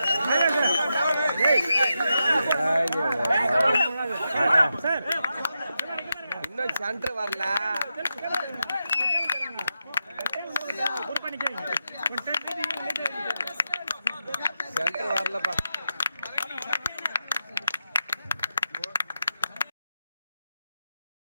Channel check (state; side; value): inverted; both; correlation -0.87